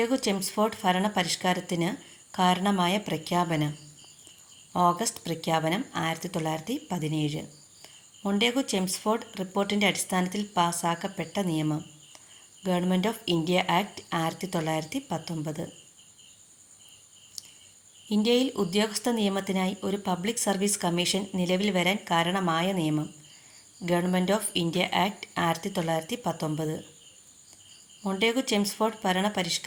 Chelmsford ഭരണ പരിഷ്കാരത്തിന് കാരണമായ പ്രഖ്യാപനം ഓഗസ്റ്റ് പ്രഖ്യാപനം 1917. മൊണ്ടേഗു ചെംസ്ഫോർഡ് റിപ്പോർട്ടിൻ്റെ അടിസ്ഥാനത്തിൽ പാസാക്കപ്പെട്ട നിയമം ഗവൺമെൻറ് ഓഫ് ഇന്ത്യ ആക്ട് 1919. ഇന്ത്യയിൽ ഉദ്യോഗസ്ഥ നിയമത്തിനായി ഒരു പബ്ലിക് സർവീസ് കമ്മീഷൻ നിലവിൽ വരാൻ കാരണമായ നിയമം government of India act 1919. Montagu Chelmsford ഭരണ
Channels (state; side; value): identical; both; correlation 1.00